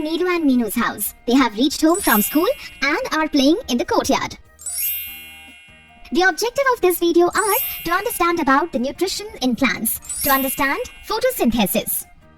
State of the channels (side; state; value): both; identical; correlation 1.00